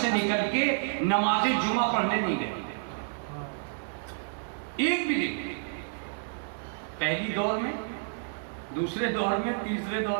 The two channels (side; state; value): left; silent; digital silence